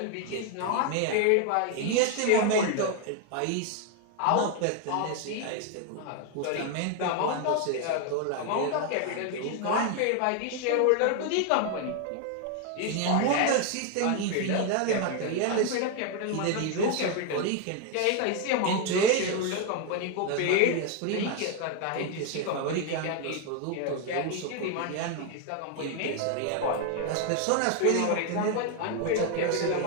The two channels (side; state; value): both; different; correlation 0.01